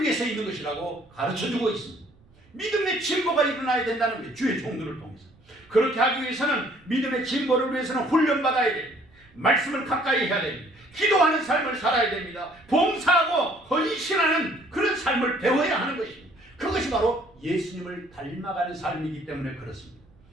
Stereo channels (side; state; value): right; noise; rumble, 29 dB below the sound